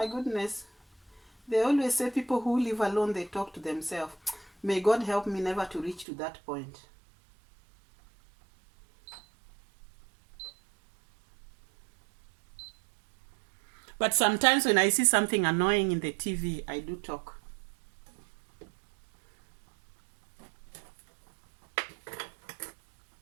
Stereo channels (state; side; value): drops out; left; at 6.1 s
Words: goodness. They always say people who live alone, they talk to themselves. May God help me never to reach to that point. But sometimes when I see something annoying in the TV, I do talk.